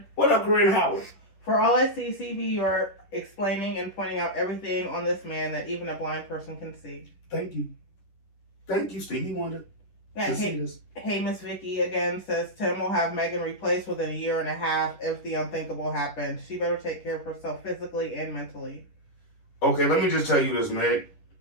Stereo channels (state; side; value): late; right; 11 ms